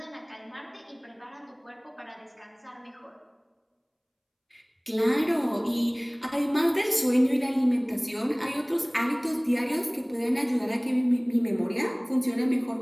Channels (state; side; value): identical; both; correlation 1.00